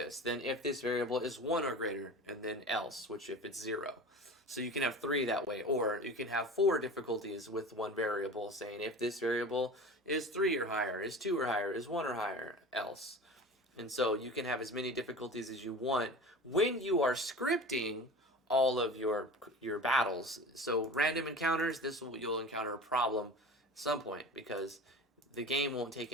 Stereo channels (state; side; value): normal; both; correlation 0.35